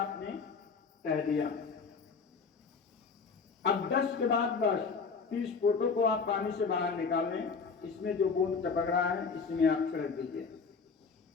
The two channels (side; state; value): right; quieter; 5.2 dB